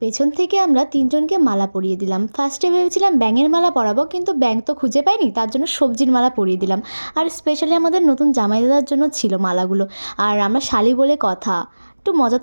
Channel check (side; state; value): both; inverted; correlation -1.00